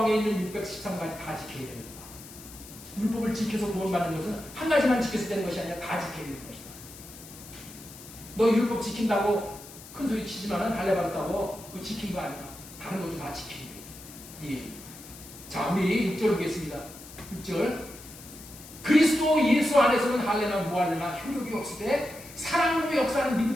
있는 613가지 다 지켜야 됩니다. 율법을 지켜서 구원받는 것은 한 가지만 지켜서 되는 것이 아니라 다 지켜야 되는 것이다. 너 율법 지킨다고 큰 소리 치지만은 할례 받았다고 그거 지킨 거 아니야. 다른 것도 다 지키는 거예요. 예. 자, 우리 6절 보겠습니다. 6절. 그리스도 예수 안에서는 할례나 무할례나 효력이 없을 때 사랑으로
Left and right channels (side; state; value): left; noise; hiss, 17 dB below the sound